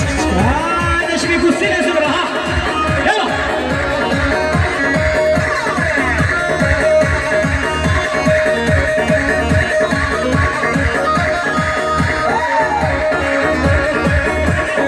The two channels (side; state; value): both; identical; correlation 1.00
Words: نشمی کسی نزد رها یلا